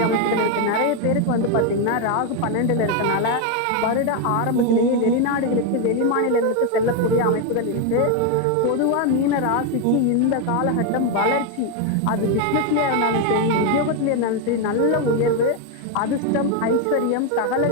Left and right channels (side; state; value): both; different; correlation 0.02